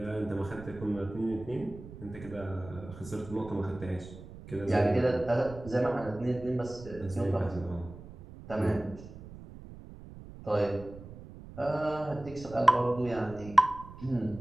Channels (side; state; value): right; noise; rumble, 15 dB below the sound